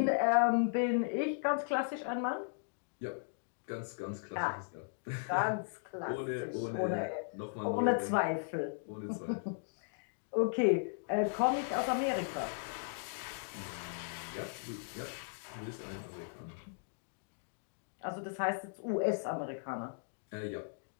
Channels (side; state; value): right; silent; digital silence